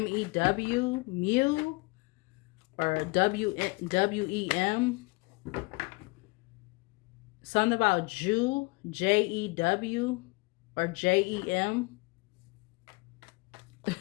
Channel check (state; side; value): quieter; right; 26.6 dB